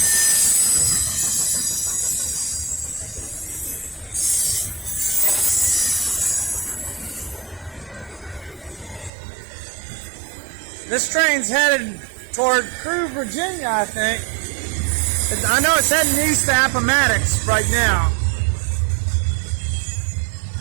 This train's headed toward Crewe, Virginia, I think. I know it's heading east to Appomattox right now.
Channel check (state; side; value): drops out; left; at 9.1 s